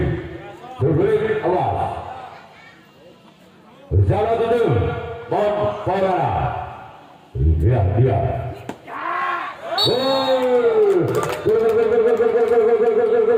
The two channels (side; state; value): both; identical; correlation 1.00